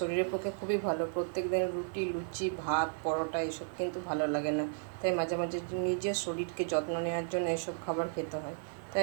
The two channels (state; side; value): silent; left; 55 dB below the other